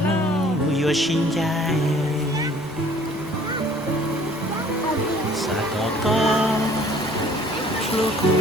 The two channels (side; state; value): right; noise; rumble, 24 dB below the sound